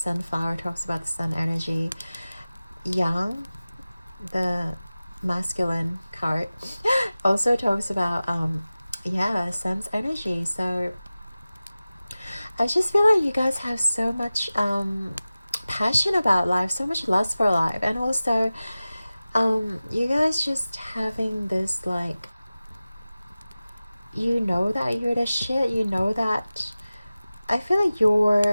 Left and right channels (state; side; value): inverted; both; correlation -0.97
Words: talks about the sun energy. Yang, the masculine card, also talks about yeah, sun's energy. So I just feel like you guys have so much passion about life, so much lust for life, and also you guys just having this like, you know that you're the shit, you know that, I feel like